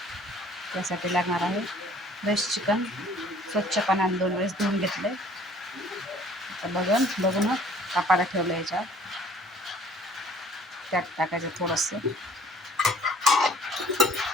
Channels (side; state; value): both; normal; correlation 0.54